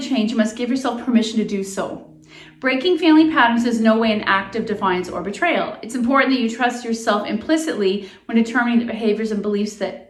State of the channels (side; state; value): both; identical; correlation 1.00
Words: change, you must give yourself permission to do so. Breaking family patterns is no way an act of defiance or betrayal. It's important that you trust yourself implicitly when determining the behaviors and beliefs